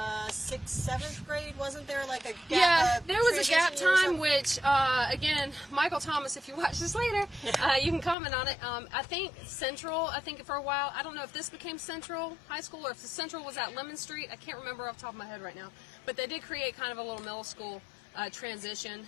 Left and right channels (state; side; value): drops out; right; at 8.2 s